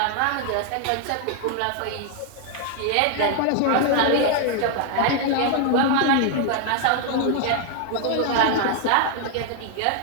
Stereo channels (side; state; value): both; different; correlation 0.00